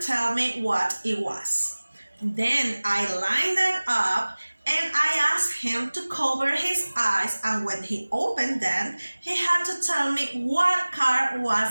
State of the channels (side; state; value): both; inverted; correlation -1.00